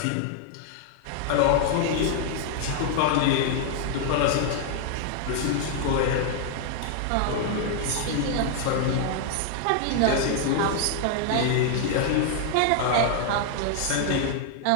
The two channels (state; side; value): different; both; correlation 0.00